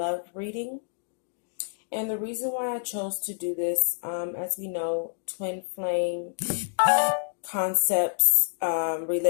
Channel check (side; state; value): right; silent; digital silence